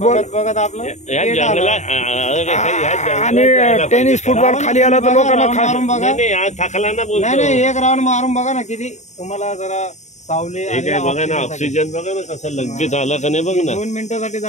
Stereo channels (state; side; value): late; right; 0.34 ms